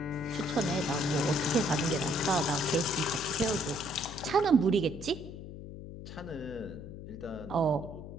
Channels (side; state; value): left; noise; hum, 11 dB below the sound